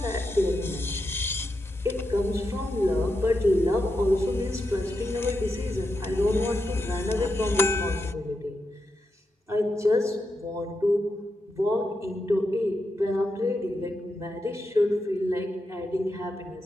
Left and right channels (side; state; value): both; normal; correlation 0.86